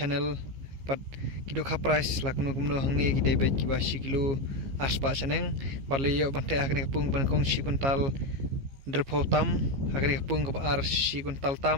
pat ki dokha price lakno kumno hangni ki debet ki basi kilo aspa chaneng bar layo ban te hakne kapung ban kong si kuntal drpo tam hakne kapung ka ar si kuntal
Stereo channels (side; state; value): left; late; 15 ms